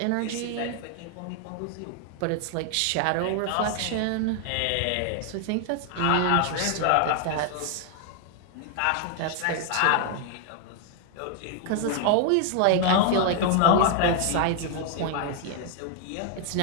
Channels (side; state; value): both; different; correlation 0.00